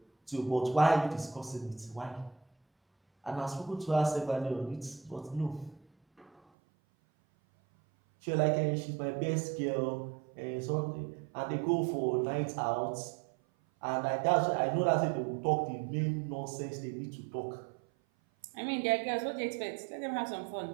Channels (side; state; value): left; drops out; at 6.4 s